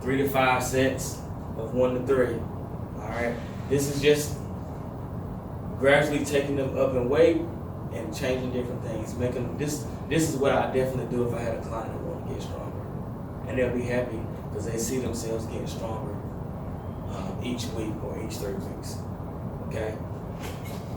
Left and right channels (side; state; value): both; identical; correlation 1.00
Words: 3 to 5 sets of 1 to 3. All right. This is just gradually taking them up in weight and changing different things. Making this is what I definitely do if I had a client that want to get stronger, and they'll be happy because they see themselves getting stronger each week or each 3 weeks. Okay.